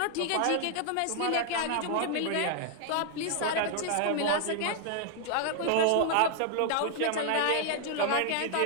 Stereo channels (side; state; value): both; different; correlation 0.00